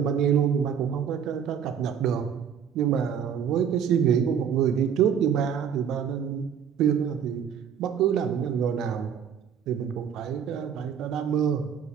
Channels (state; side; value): quieter; left; 8.0 dB